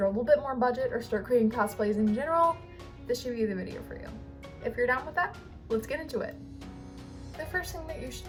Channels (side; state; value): both; identical; correlation 1.00